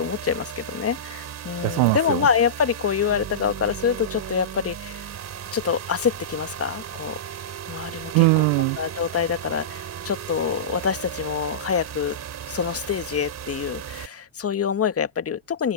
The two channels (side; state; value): both; normal; correlation -0.18